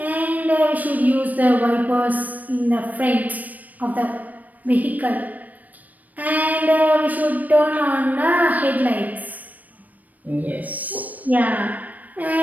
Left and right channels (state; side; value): late; left; 0.079 ms